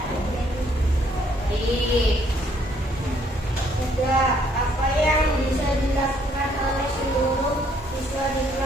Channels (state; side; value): normal; both; correlation 0.67